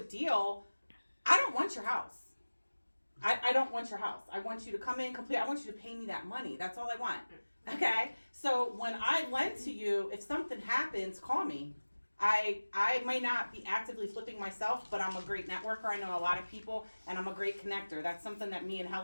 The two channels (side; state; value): both; inverted; correlation -1.00